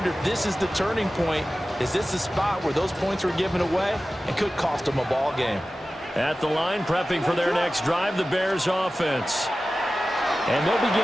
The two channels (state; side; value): normal; both; correlation 0.95